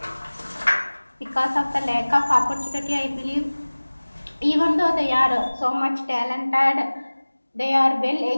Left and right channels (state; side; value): inverted; both; correlation -1.00